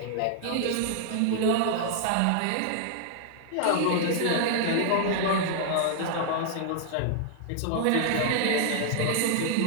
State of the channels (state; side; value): different; both; correlation 0.00